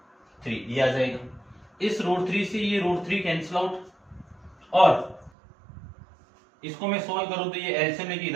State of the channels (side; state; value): left; drops out; at 5.3 s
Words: 3, ये आ जाएगा। इस रूट 3 से ये रूट 3 कैंसिल आउट, और इसको मैं सोल्व करूं तो ये एलसीएम लेके